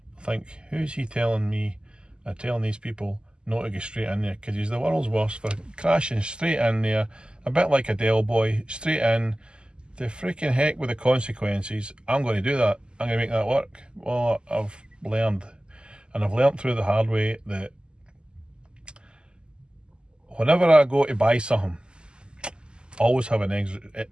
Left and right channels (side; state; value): left; late; 0.049 ms